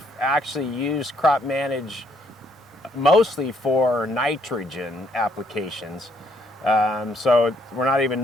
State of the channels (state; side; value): normal; both; correlation 0.70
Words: actually used Crop Manage mostly for nitrogen applications. So we're not